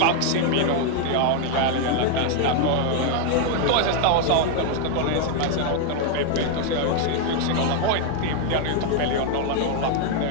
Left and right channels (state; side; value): different; both; correlation 0.01